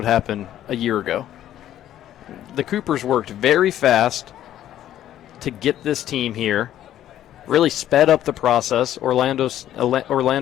happen a year ago? The Coopers worked very fast to get this team here, really sped up the process. Orlando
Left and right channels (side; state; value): right; quieter; 12.0 dB